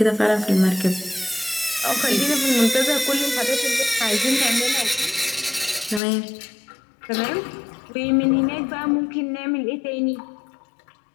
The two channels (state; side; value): drops out; right; at 6.0 s